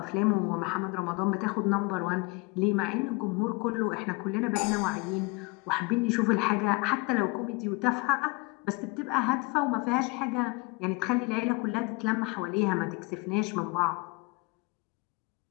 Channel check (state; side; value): quieter; right; 26.5 dB